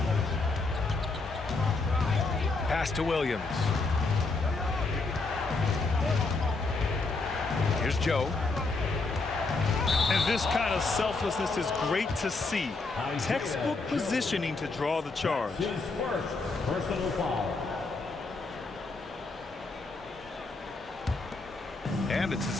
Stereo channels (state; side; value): quieter; right; 3.7 dB